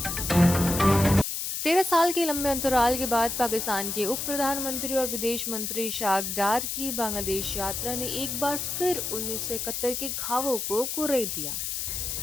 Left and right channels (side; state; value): left; noise; hiss, 3 dB below the sound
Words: 13 साल के लंबे अंतराल के बाद पाकिस्तान के उप प्रधानमंत्री और विदेश मंत्री इशाक डार की बांग्लादेश यात्रा ने एक बार फिर 1971 के घावों को कुरेद दिया।